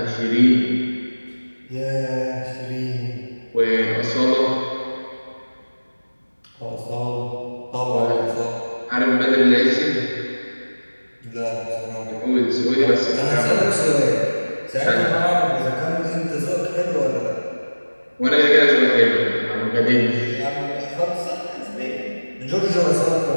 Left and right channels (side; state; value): both; inverted; correlation -1.00